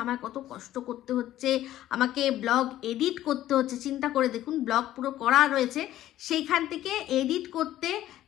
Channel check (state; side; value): quieter; right; 13.5 dB